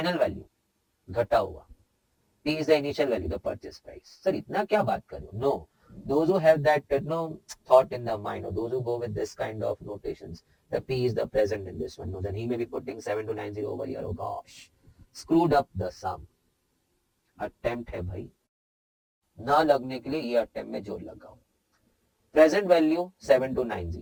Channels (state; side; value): identical; both; correlation 1.00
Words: value. घटा हुआ. P is the initial value, the purchase price. Sir, इतना क्या बात कर रहे हो? No. Those who have that thought in their mind, or those who go with this kind of notations, the P is the present in this one. No, then he may be putting 7290 over here. Oh gosh, screwed up the sum. Attempt है भाई. ना लगने के लिए ये attempt में जोर लगाओ. Present value